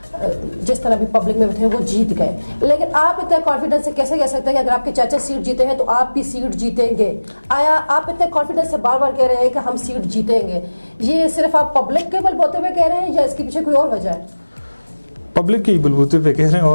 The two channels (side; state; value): both; inverted; correlation -1.00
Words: جس طرح بھی پبلک میں تھے وہ جیت گئے. لیکن آپ اتنے کانفیڈنس سے کیسے کہہ سکتے ہیں کہ اگر آپ کے چاچا سیٹ جیتے ہیں تو آپ بھی سیٹ جیتیں گے؟ آیا آپ اتنے کانفیڈنس سے بار بار کہہ رہے ہیں کہ ہم سیٹ جیتیں گے, یہ صرف آپ پبلک کے بل بوتے ہوئے کہہ رہے ہیں یا اس کے پیچھے کوئی اور وجہ ہے؟ پبلک کے ہی بلبوتے پہ کہہ رہے ہیں,